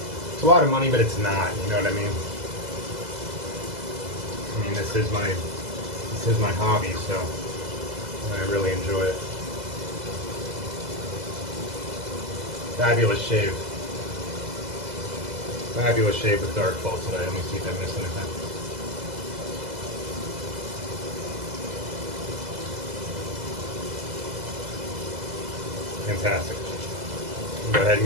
It's a lot of money, but it's not, you know what I mean? I mean, this is my hobby, so I really enjoy it. Fabulous shave. Fabulous shave with Darkfall today. Let me see if I missed anything. Fantastic. Go ahead and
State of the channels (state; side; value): late; left; 2.0 ms